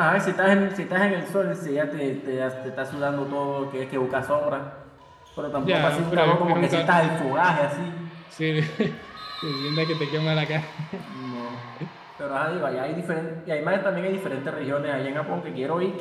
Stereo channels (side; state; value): both; identical; correlation 1.00